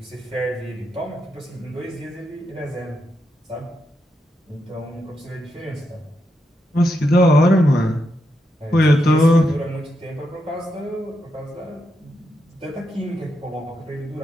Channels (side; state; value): both; normal; correlation 0.83